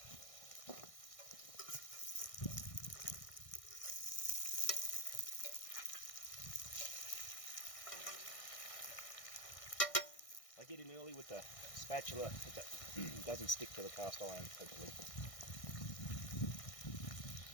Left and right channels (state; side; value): late; right; 1.6 ms